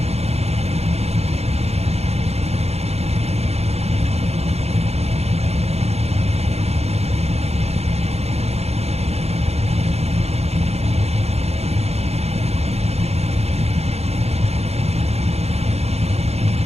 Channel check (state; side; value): late; left; 0.30 ms